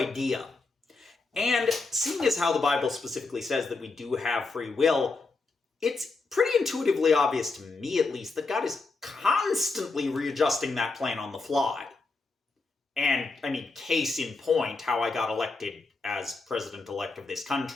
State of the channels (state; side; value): quieter; right; 3.8 dB